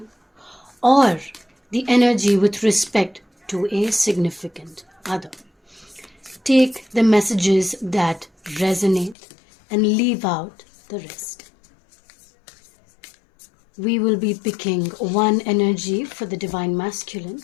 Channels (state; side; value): drops out; right; at 9.2 s